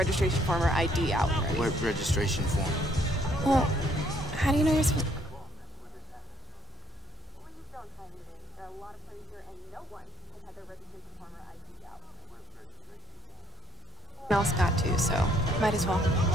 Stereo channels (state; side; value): normal; both; correlation 0.66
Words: form or ID out already. What registration form? Well, how do you know you're supposed to... else got to, so might as well.